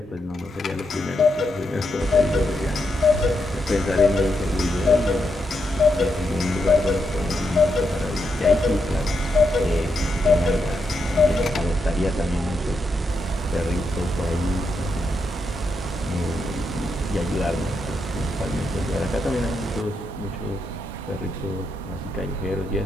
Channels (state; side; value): normal; both; correlation 0.82